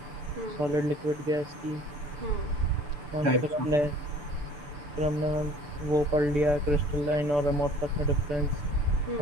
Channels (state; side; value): late; left; 6.8 ms